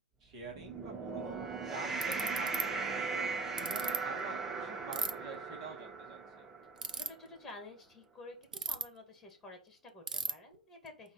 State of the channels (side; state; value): left; quieter; 4.1 dB